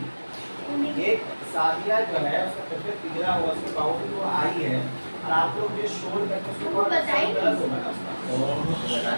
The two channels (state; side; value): inverted; both; correlation -1.00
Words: एक सादिया जो है उसका तबियत बिगड़ा हुआ उसके बावजूद वो आई है और आप लोग ये शोर करके उसको वो बताइए। गलत होगा ना उसका।